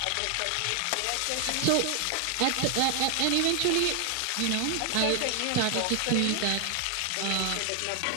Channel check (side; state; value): both; different; correlation 0.00